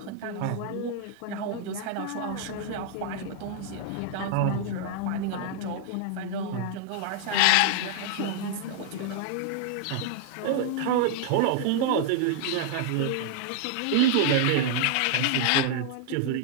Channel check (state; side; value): different; both; correlation 0.00